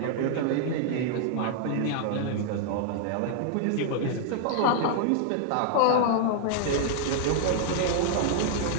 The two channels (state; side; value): different; both; correlation -0.01